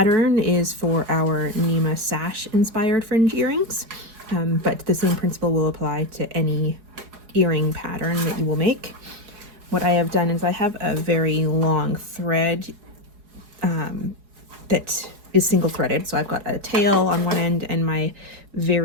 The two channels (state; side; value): late; left; 4.8 ms